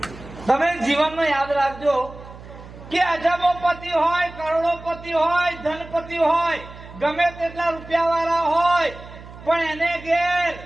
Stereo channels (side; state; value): right; noise; hum, 17 dB below the sound